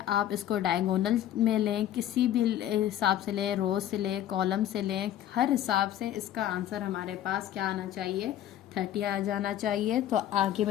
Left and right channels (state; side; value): quieter; right; 11.8 dB